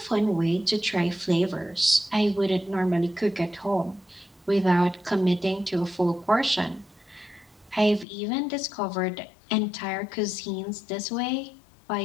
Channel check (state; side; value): drops out; right; at 8.1 s